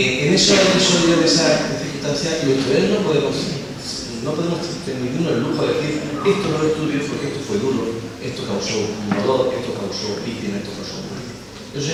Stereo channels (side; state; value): both; identical; correlation 1.00